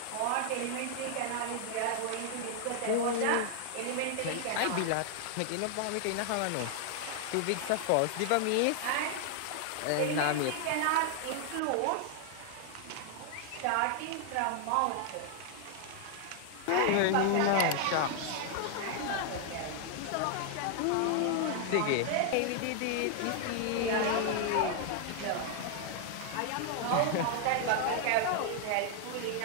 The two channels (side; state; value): both; different; correlation 0.00